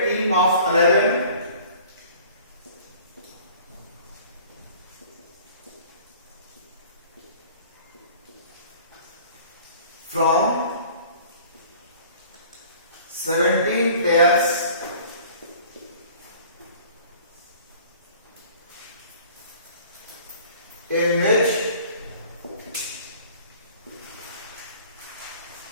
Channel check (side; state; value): both; inverted; correlation -0.49